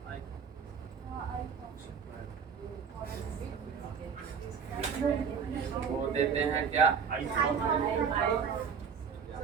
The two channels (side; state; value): left; quieter; 6.5 dB